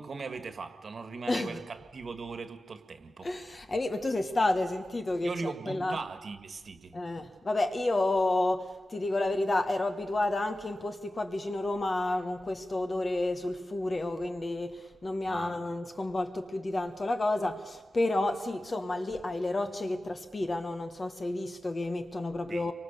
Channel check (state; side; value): normal; both; correlation 0.95